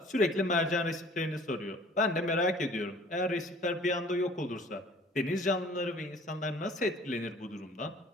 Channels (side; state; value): both; normal; correlation 0.51